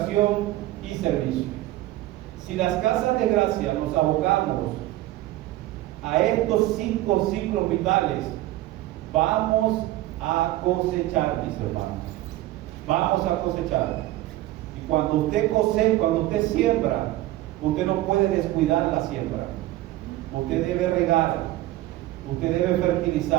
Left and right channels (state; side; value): quieter; left; 16.2 dB